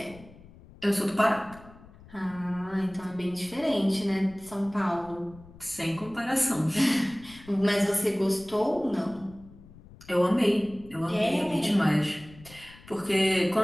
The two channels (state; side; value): noise; left; rumble, 21 dB below the sound